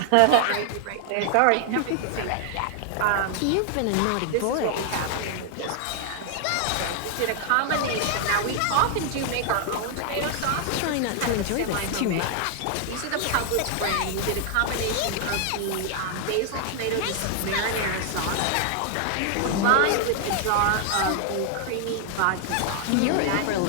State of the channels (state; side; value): different; both; correlation 0.00